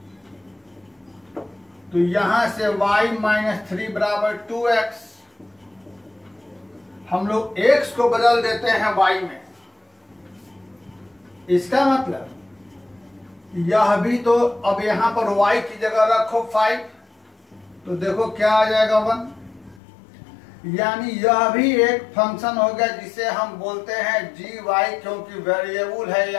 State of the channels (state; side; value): drops out; right; at 19.8 s